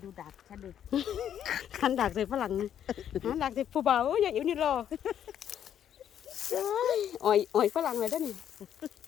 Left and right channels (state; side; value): quieter; right; 9.8 dB